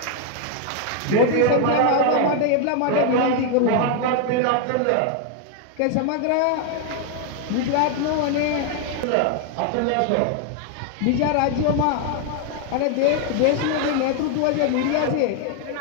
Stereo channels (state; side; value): different; both; correlation 0.00